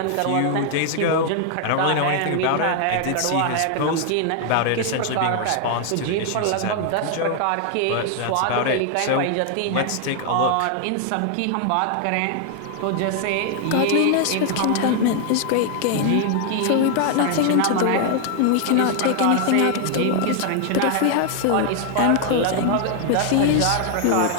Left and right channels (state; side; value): different; both; correlation 0.00